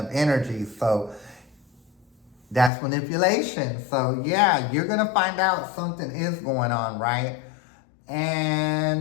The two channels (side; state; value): right; drops out; at 2.7 s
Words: energy, so that's manipulation. So yeah, you're gonna find out something is going on, right?